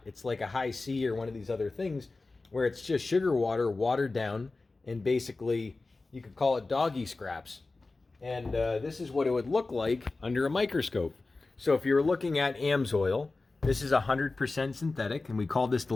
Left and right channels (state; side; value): quieter; right; 3.5 dB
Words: It's like a high C or one of these other things where it's just sugar water watered down, and basically you could call it doggy scraps. And this is what it would look like under a microscope. So if you're looking at AMSOIL, this is 100% synthetic, and we call this the